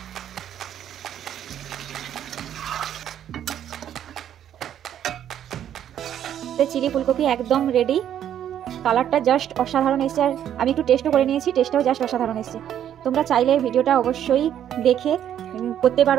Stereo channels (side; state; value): left; quieter; 10.3 dB